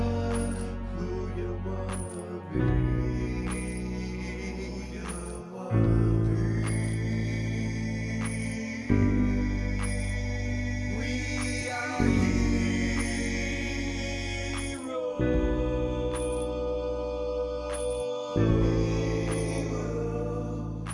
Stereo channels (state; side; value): identical; both; correlation 1.00